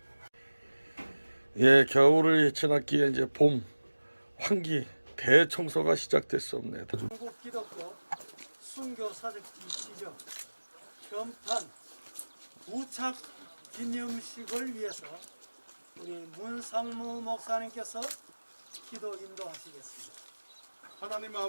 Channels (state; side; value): inverted; both; correlation -1.00